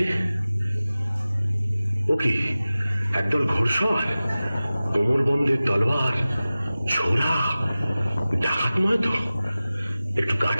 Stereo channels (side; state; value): both; inverted; correlation -0.97